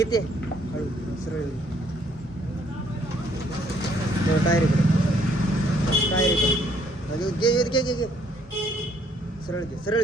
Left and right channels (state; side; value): normal; both; correlation 0.66